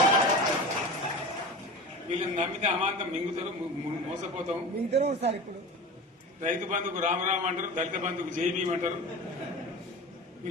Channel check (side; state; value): both; normal; correlation 0.32